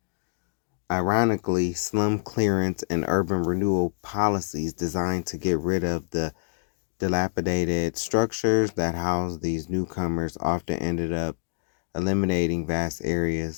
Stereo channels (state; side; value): silent; right; digital silence